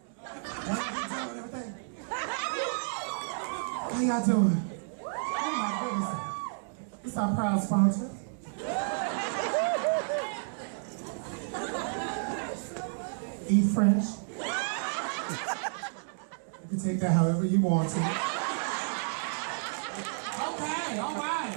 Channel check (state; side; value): silent; left; digital silence